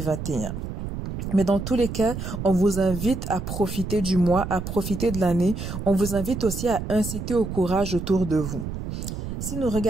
Mais dans tous les cas, on vous invite à profiter du mois, à profiter de l'année. On vous invite aussi à inciter au courage autour de vous. Si nous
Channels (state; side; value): noise; right; rumble, 6 dB below the sound